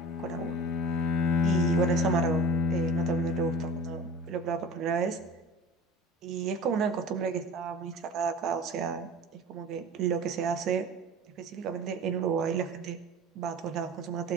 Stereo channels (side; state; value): both; normal; correlation 0.39